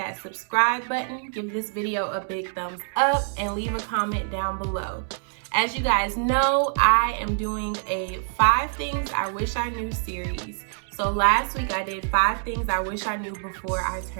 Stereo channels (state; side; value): silent; left; 61 dB below the other